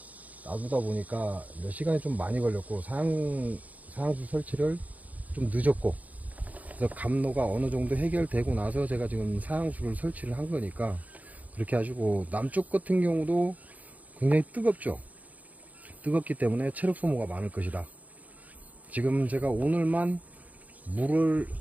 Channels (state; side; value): late; left; 0.074 ms